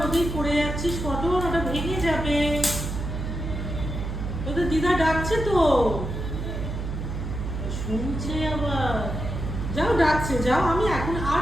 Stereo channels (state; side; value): noise; right; hum, 5 dB below the sound